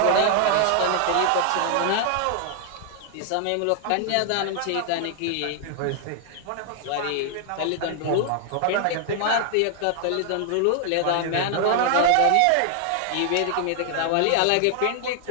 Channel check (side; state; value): both; different; correlation 0.00